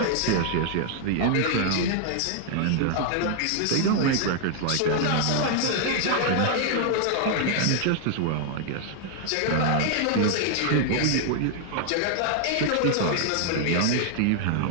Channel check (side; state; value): both; different; correlation 0.00